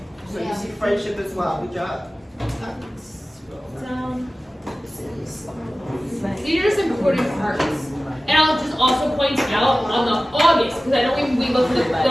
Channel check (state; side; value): normal; both; correlation 0.96